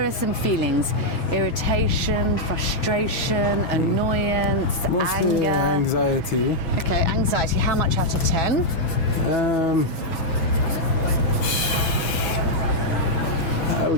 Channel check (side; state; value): right; late; 6.1 ms